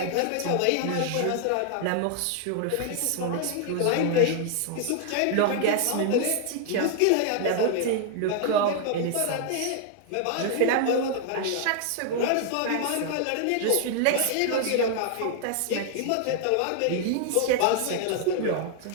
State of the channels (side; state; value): both; different; correlation 0.00